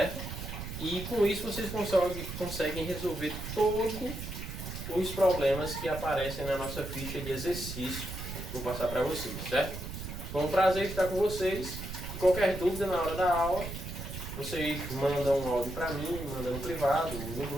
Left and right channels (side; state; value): right; noise; rumble, 8 dB below the sound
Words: E com isso vocês conseguem resolver todos os problemas que aparecem na nossa ficha de exercício. Vou passar para vocês, certo? Foi um prazer estar com vocês. E qualquer dúvida na hora da aula, vocês mandam um áudio para mim, mandam no privado, no